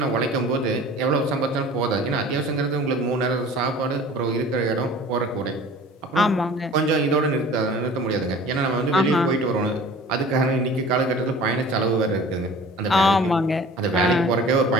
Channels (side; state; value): both; normal; correlation 0.44